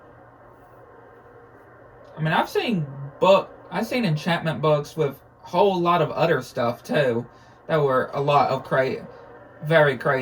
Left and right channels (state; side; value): identical; both; correlation 1.00